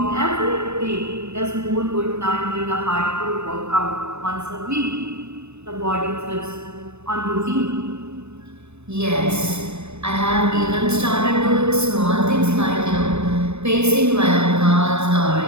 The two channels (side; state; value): left; late; 0.81 ms